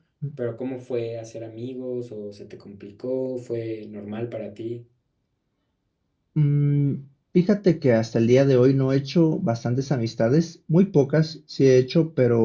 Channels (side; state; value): both; identical; correlation 1.00